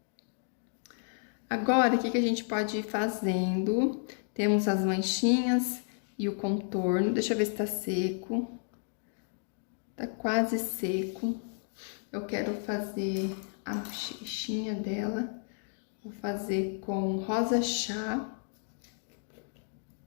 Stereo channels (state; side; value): silent; right; 56 dB below the other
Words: Agora, o que a gente pode ir fazendo? Temos as manchinhas e o contorno. Deixa eu ver se tá seco. Tá quase seco. Eu quero fazer a bochechinha dela. Vou fazer com rosa chá.